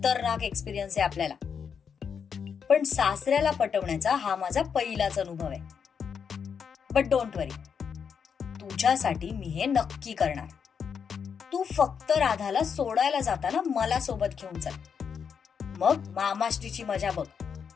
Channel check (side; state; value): right; quieter; 6.8 dB